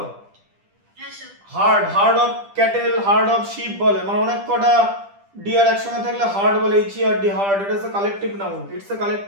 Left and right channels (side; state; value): left; late; 10 ms